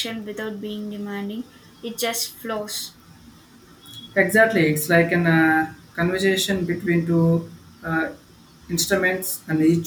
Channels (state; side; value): identical; both; correlation 1.00